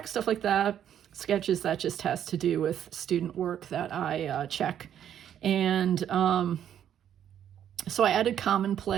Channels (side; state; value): left; quieter; 9.9 dB